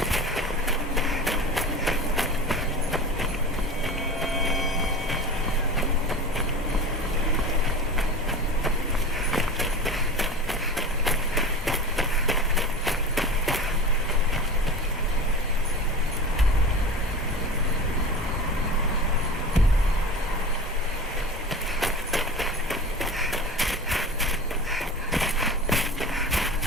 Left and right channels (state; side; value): normal; both; correlation 0.32